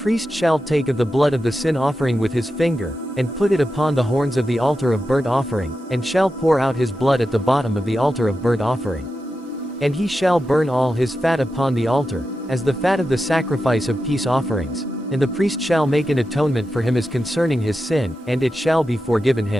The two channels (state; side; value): normal; both; correlation 0.90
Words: shall take of the blood of the sin offering with his finger, and put it upon the horns of the altar of burnt offering, and shall pour out his blood at the bottom of the altar of burnt offering. And he shall burn all his fat upon the altar, as the fat of the sacrifice of peace offerings. And the priest shall make an atonement for him as concerning his sin, and it shall be forgiven